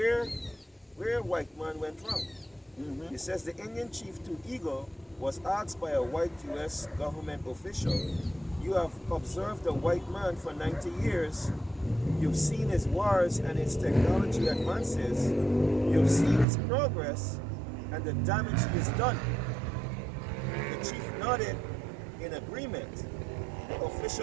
white man went wrong. It says the Indian chief To Eagle was asked by a white U.S. government official, "You have observed the white man for 90 years. You've seen his wars and his technology advances. You've seen his progress and the damage he has done." The chief nodded in agreement. The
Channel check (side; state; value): left; drops out; at 16.4 s